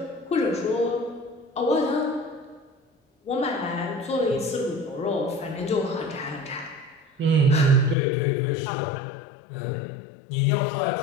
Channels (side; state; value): right; drops out; at 8.0 s